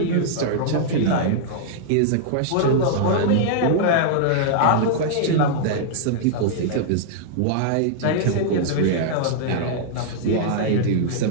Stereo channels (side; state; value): both; different; correlation -0.01